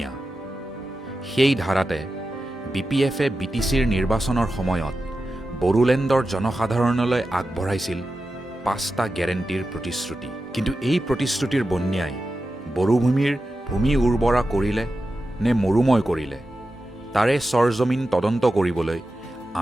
সেই ধাৰাতে BPFে BTCৰ নিৰ্বাচনৰ সময়ত বড়োলেণ্ডৰ জনসাধাৰণলৈ আগবঢ়াইছিল 5টা গেৰেণ্টিৰ প্ৰতিশ্ৰুতি। কিন্তু এই প্ৰতিশ্ৰুতিৰ বন্যাই বড়োভূমিৰ ভূমি উৰ্বৰা কৰিলে নে মৰুময় কৰিলে, তাৰে চৰজমিন তদন্ত কৰিবলৈ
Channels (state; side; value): normal; both; correlation 0.91